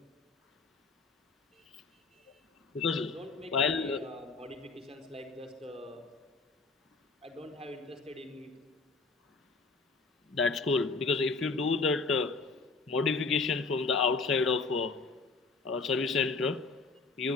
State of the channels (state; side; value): quieter; right; 4.1 dB